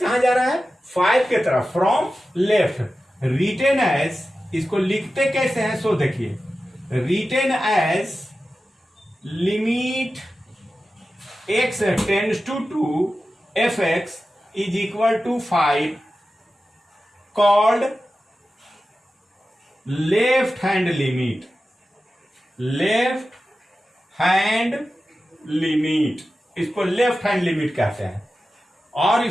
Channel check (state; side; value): normal; both; correlation 0.93